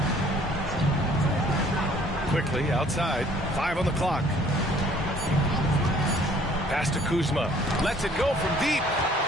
Quickly outside. 5 on the clock. Pass to Kuzma. Lets it go from deep.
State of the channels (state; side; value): normal; both; correlation 0.57